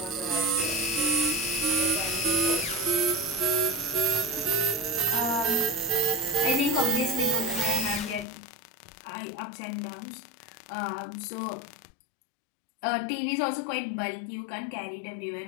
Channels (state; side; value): drops out; right; at 8.2 s